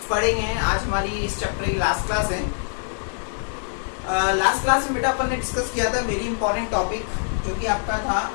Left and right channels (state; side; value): silent; right; 62 dB below the other